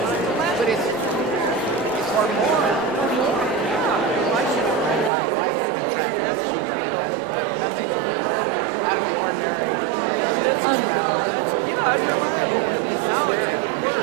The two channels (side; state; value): left; drops out; at 5.1 s